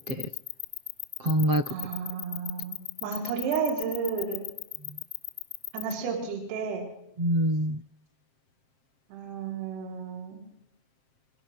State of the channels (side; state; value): left; late; 7.6 ms